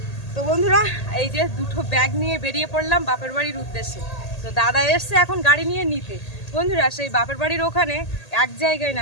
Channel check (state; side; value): late; right; 1.8 ms